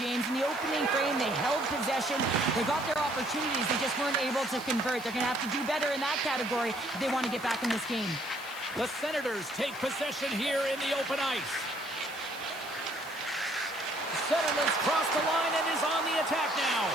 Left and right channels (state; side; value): noise; right; hiss, 19 dB below the sound